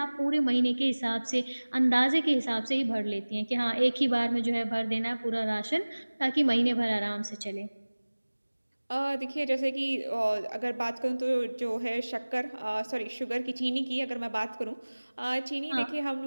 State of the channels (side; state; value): both; inverted; correlation -1.00